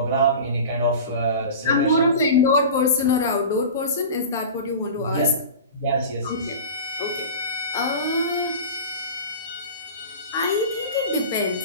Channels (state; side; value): inverted; both; correlation -0.33